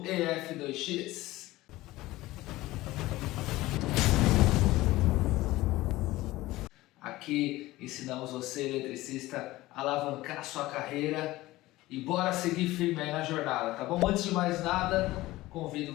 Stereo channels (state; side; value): quieter; right; 17.9 dB